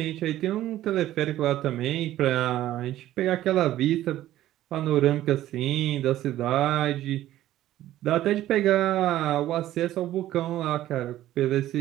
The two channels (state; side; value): quieter; left; 13.8 dB